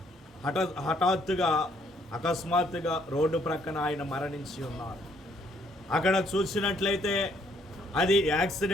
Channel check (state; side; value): normal; both; correlation 0.67